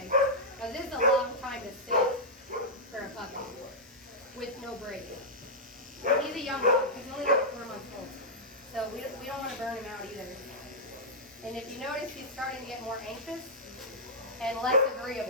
Because this is a long time to sit for a puppy with no break. He's a young dog. He's only like 4 months old. So we don't want to burn him out either. And if you notice, he's starting to get more anxious and less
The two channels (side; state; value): both; normal; correlation -0.10